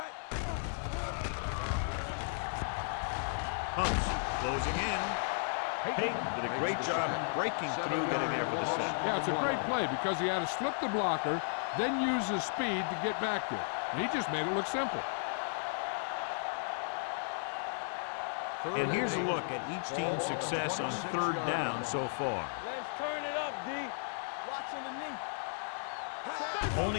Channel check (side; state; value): right; silent; 55 dB below the other